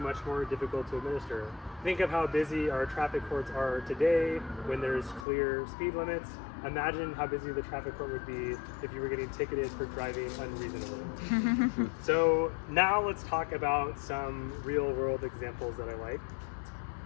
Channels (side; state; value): right; drops out; at 5.2 s